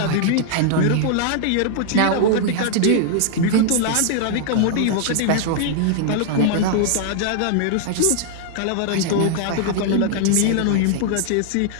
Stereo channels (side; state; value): both; different; correlation -0.01